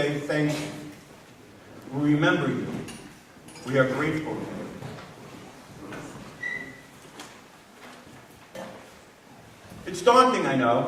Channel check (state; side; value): identical; both; correlation 1.00